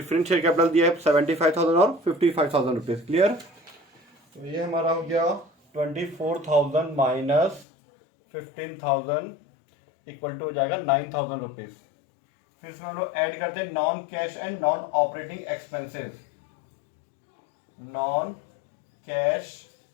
शेयर कैपिटल दिया है 75,000 और 55,000 रुपीज। क्लियर? तो ये हमारा हो गया 24,000 माइनस 15,000 इक्वल टू हो जाएगा 9,000 रुपीज। फिर इसमें हम लोग ऐड करते हैं non cash and non operating expenses. Non cash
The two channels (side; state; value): right; drops out; at 7.7 s